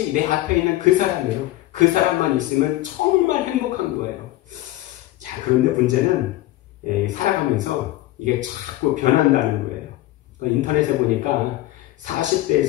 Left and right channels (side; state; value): right; quieter; 16.5 dB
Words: 내 앞에 있는 그 사람이에요. 그 사람만 있으면 정말 행복한 거예요. 자, 그런데 문제는 살아가면서 이게 자꾸 변한다는 거예요. 인터넷에 보니까